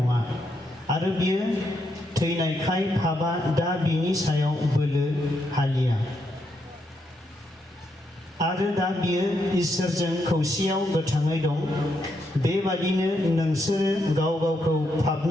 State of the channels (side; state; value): both; normal; correlation 0.79